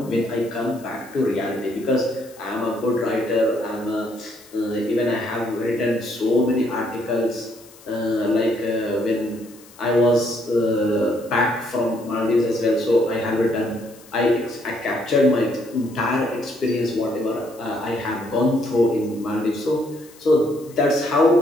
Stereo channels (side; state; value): left; noise; hiss, 24 dB below the sound